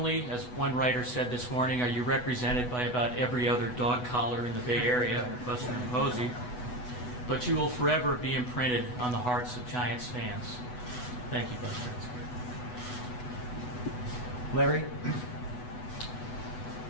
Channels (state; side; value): late; right; 8.1 ms